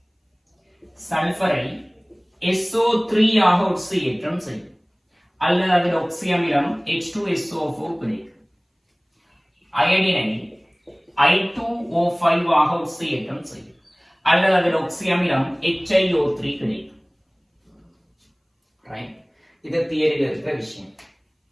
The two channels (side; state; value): both; identical; correlation 1.00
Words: சல்பரை SO3 ஆக ஒட்சியேற்றம் செய்யும், அல்லது அதில் ஒக்சி அமிலம் H2SO4 கிடைக்கும். அயடினை I2O5 ஆக ஒட்சியேற்றம் செய்யும், அல்லது அதில் ஒக்சி அமிலம் HiO3 கிடைக்கும். ரைட். இது தியரியில் இருக்கிற விஷயம்.